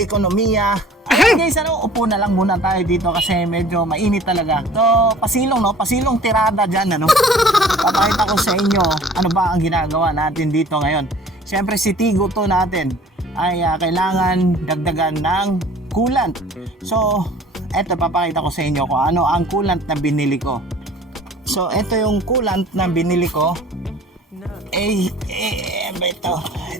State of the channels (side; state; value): both; normal; correlation 0.49